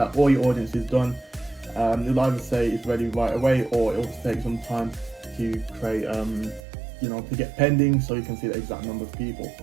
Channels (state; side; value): drops out; left; at 6.6 s